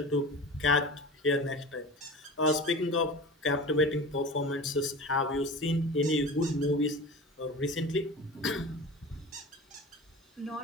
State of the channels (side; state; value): both; normal; correlation 0.34